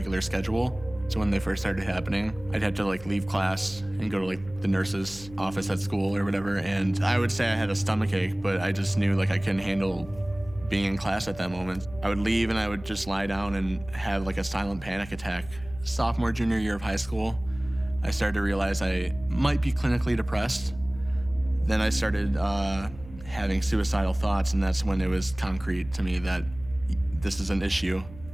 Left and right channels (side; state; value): right; noise; hum, 17 dB below the sound